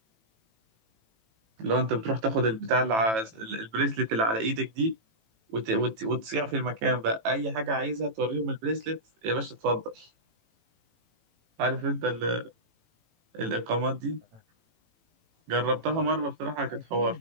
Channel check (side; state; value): left; late; 18 ms